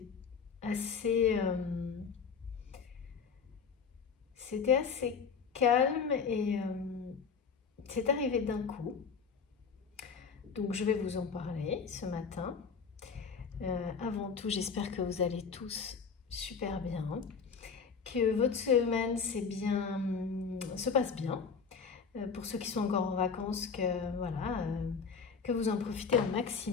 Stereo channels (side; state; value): right; quieter; 5.8 dB